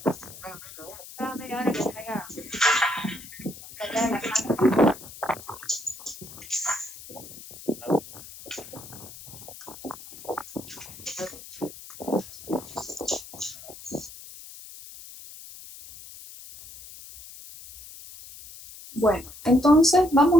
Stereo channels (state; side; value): noise; left; hiss, 16 dB below the sound